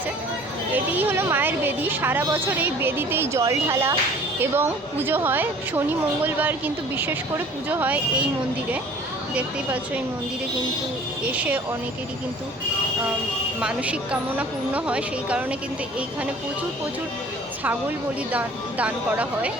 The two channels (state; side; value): normal; both; correlation 0.49